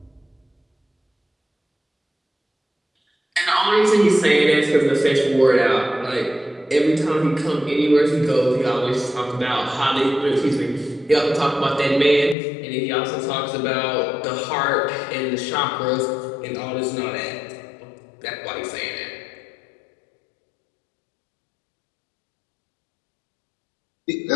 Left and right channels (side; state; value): right; drops out; at 12.4 s